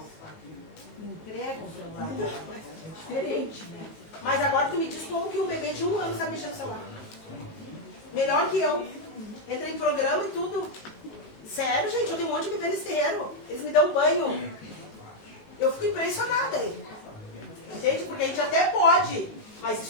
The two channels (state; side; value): late; right; 18 ms